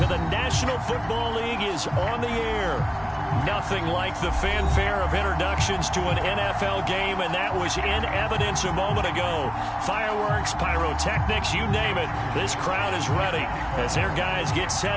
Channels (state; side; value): identical; both; correlation 1.00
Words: of the National Football League is on the air. Nothing like the fanfare of introductions to an NFL game, and that was in evidence a moment ago. Fireworks, pyrotechnics, you name it. This crowd is ready as their guys get